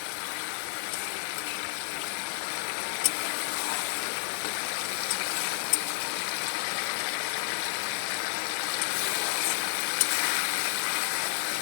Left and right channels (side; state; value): right; silent; digital silence